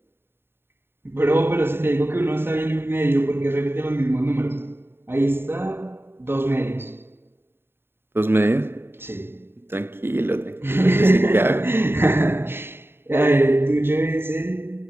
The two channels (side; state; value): left; late; 0.11 ms